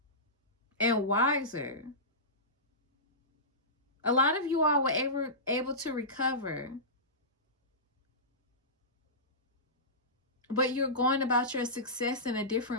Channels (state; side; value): normal; both; correlation -0.19